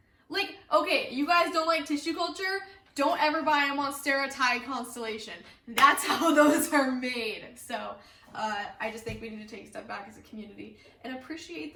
Like, okay, you guys don't like tissue culture? Don't ever buy a Monstera constellation. That's how those are made. So I just think we need to take a step back as a community and appreciate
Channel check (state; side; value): identical; both; correlation 1.00